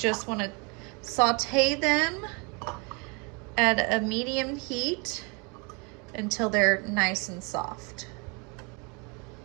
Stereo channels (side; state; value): left; quieter; 31.5 dB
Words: wanna saute them at a medium heat until they're nice and soft.